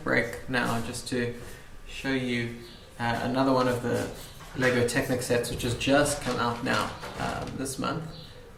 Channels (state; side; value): identical; both; correlation 1.00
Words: break now just to show you another one of the LEGO Technic sets which has just come out now this month.